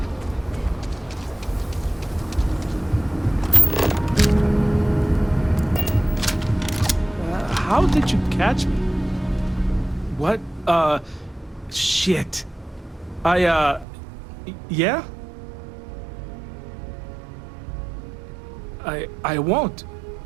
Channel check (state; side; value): drops out; left; at 13.9 s